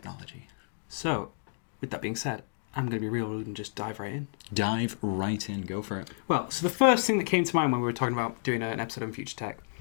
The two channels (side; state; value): right; silent; digital silence